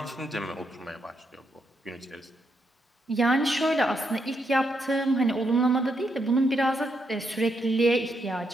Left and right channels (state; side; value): normal; both; correlation 0.79